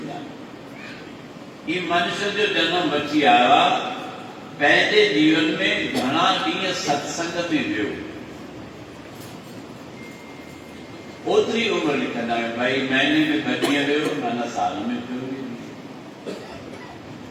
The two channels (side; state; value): both; identical; correlation 1.00